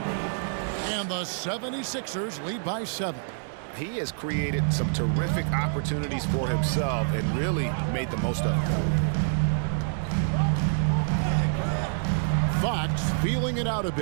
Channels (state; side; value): silent; left; digital silence